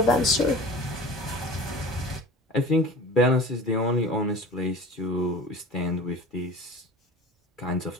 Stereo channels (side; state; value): both; normal; correlation 0.38